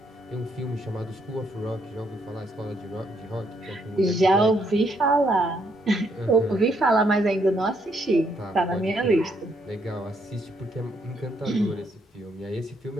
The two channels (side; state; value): both; normal; correlation 0.72